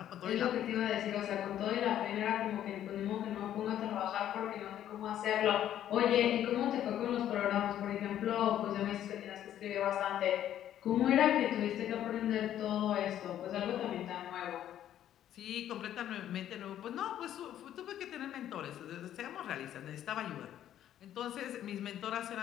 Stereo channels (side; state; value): right; quieter; 11.3 dB